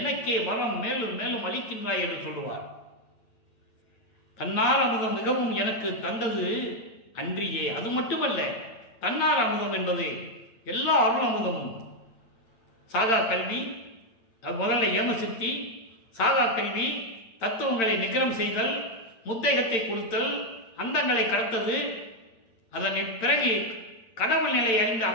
வரம் மேலும் மேலும் அளிக்கின்றாய் என்று சொல்லுவார். தன்னார் அமுதம் மிகவும் எனக்கு தந்தது அன்றியே. அது மட்டுமல்ல, தன்னார் அமுதம் என்பது எல்லா அருள் அமுதமும். சாகா கல்வி, முதல்ல ஏமசித்தி, சாகா கல்வி, தத்துவங்களை நிகரம் செய்தல், முத்தேகத்தை கொடுத்தல், அந்தங்களை கடத்தது, அதன் பிறகு கடவுள் நிலை அறிந்து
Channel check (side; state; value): right; late; 8.9 ms